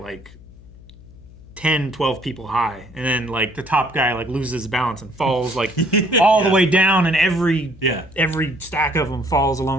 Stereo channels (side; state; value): left; noise; hum, 21 dB below the sound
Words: 10, 12 people high. And then like the top guy like loses balance and falls like all the way down, and every stack of them falls